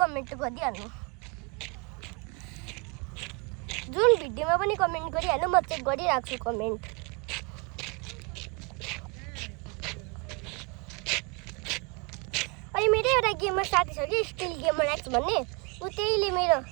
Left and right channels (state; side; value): quieter; left; 30.4 dB